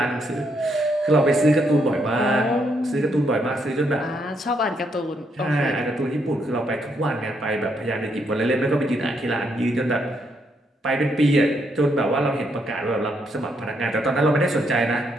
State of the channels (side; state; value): both; normal; correlation 0.75